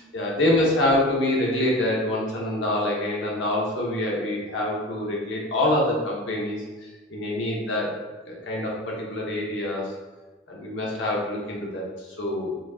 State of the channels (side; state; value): both; normal; correlation 0.33